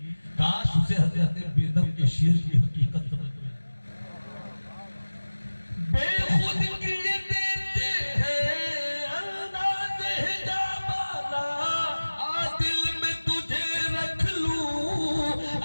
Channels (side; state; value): both; inverted; correlation -1.00